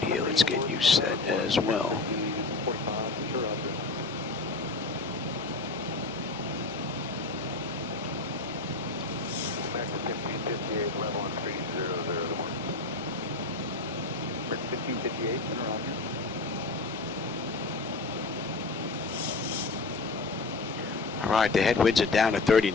here. Let's get you set as well. American 1558, level on 300 to 1. 1558, and around here. All right, the headwinds are down to 30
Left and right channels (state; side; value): quieter; right; 3.5 dB